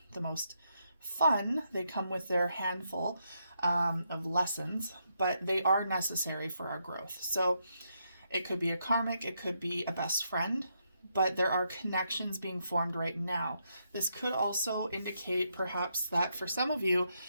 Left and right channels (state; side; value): inverted; both; correlation -0.79